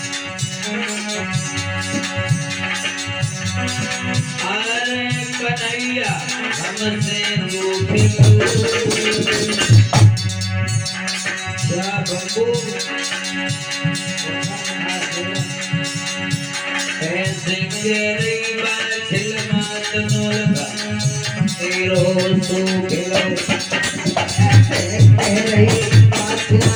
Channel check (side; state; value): both; identical; correlation 1.00